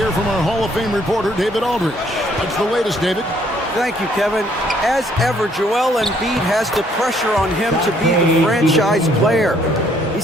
from our Hall of Fame reporter, David Aldridge. What's the latest, David? Thank you, Kevin. As ever, Joel Embiid has the pressure on him to be the franchise player. He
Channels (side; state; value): both; normal; correlation 0.65